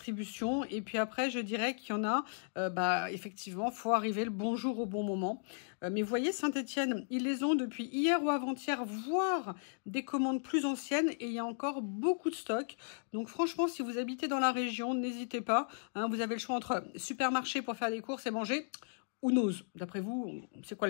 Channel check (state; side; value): silent; right; digital silence